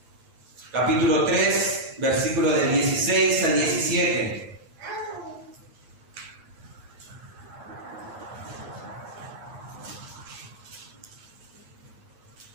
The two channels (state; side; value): late; left; 9.5 ms